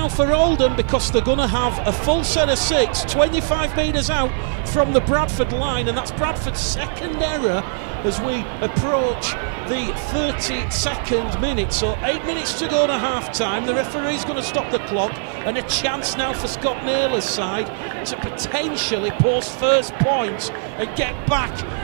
for Oldham because they're going to have a full set of 6, 25 metres out from the Bradford line, and that's Bradford's second error as we approach the 32nd minute. So 8 minutes to go to half time. The referee's going to stop the clock, and a chance now for Scott Naylor's side to potentially post first points and get back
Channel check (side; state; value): left; silent; digital silence